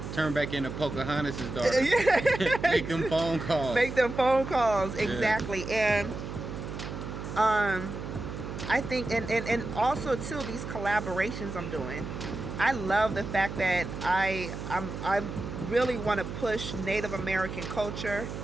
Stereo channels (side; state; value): right; noise; hum, 7 dB below the sound